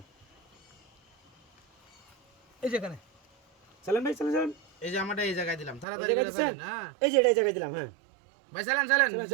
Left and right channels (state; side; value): drops out; left; at 5.9 s